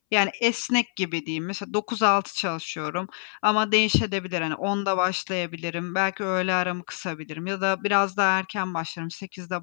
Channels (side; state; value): right; silent; 61 dB below the other